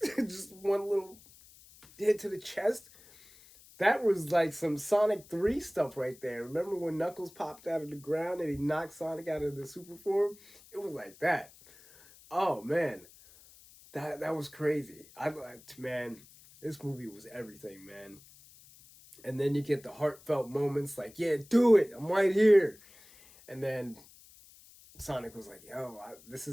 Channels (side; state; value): left; noise; hiss, 23 dB below the sound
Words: one little hit to the chest. That was like some Sonic 3 stuff right there. Remember when Knuckles popped out of the ground and he knocked Sonic out of the super form? It was like that. Oh man. That was crazy. I liked, man, this movie was everything, man. And then you get the heartfelt moments like, yeah, do it. I'm right here. And then Sonic was like, "Yo, this